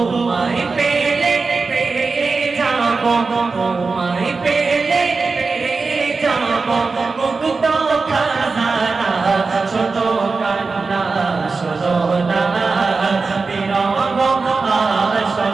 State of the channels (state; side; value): quieter; left; 4.2 dB